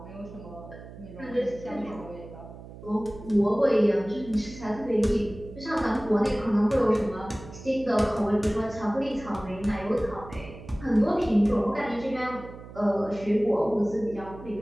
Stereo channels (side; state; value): right; noise; hum, 15 dB below the sound